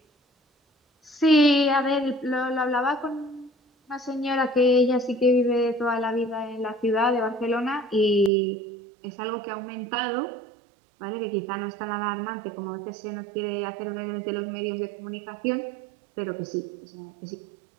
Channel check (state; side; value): drops out; left; at 8.3 s